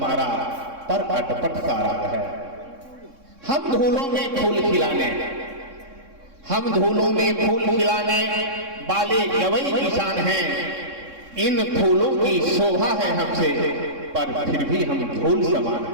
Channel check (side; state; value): left; late; 3.6 ms